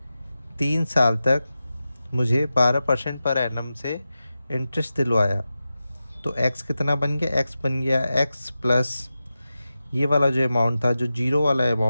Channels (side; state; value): both; inverted; correlation -0.93